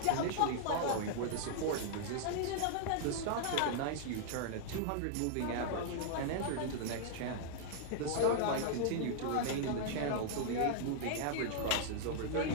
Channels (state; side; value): different; both; correlation -0.01